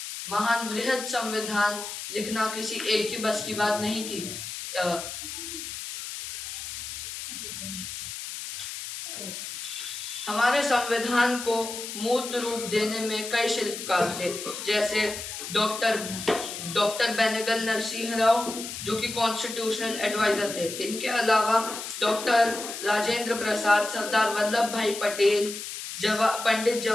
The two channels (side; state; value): left; noise; hiss, 8 dB below the sound